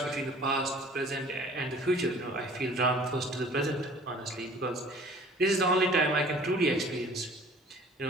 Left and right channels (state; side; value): normal; both; correlation 0.50